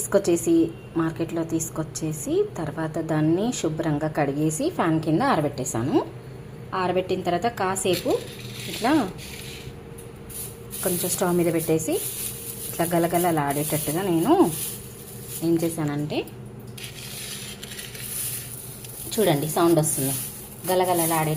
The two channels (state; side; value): identical; both; correlation 1.00